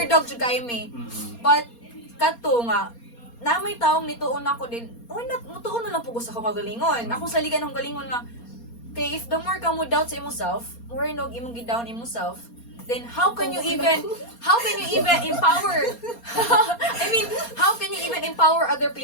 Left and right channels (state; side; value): late; right; 4.3 ms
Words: jud kayo me. Mm-mm. But, kato nga, na may taong nituon ako din, why not, mutuon na lang po ko sa kagalingon. Ako sa liga ng galingon nga, kay if the more ka mo doubt sa imong self, more nog imong gi-down imong self, then how can you even empower I mean, how can you even empower other